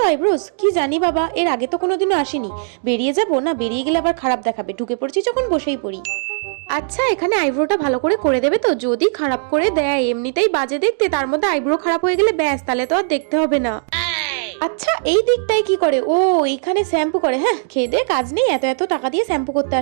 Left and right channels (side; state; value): left; silent; digital silence